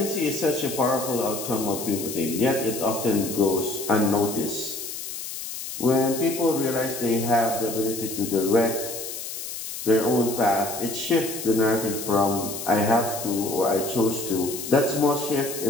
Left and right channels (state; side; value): noise; left; hiss, 8 dB below the sound